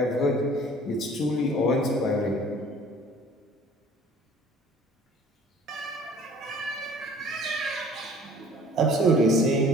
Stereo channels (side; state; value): both; normal; correlation 0.50